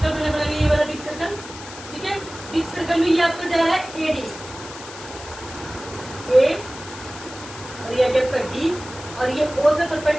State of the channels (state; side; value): noise; left; hiss, 14 dB below the sound